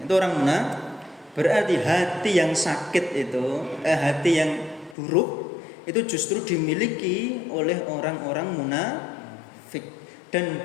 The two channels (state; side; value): drops out; right; at 5.0 s